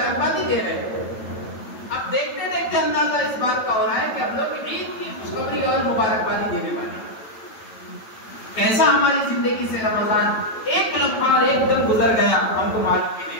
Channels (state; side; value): late; right; 9.0 ms